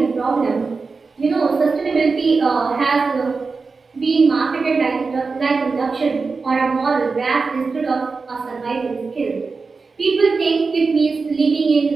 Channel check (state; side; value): quieter; left; 4.4 dB